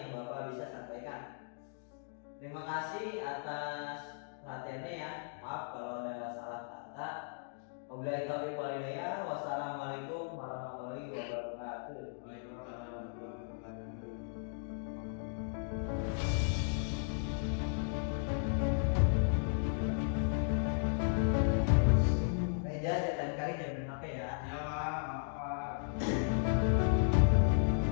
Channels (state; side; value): silent; right; digital silence